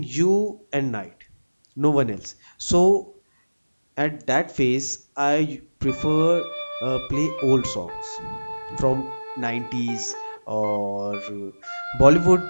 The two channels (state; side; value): inverted; both; correlation -1.00